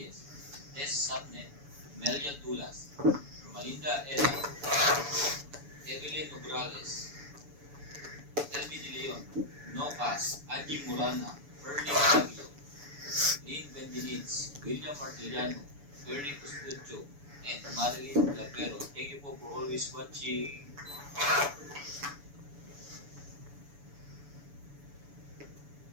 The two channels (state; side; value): late; left; 7.0 ms